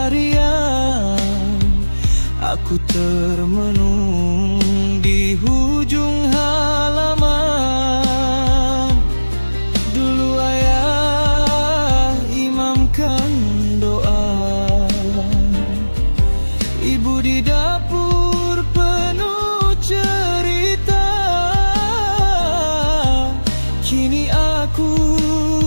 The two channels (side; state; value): both; inverted; correlation -1.00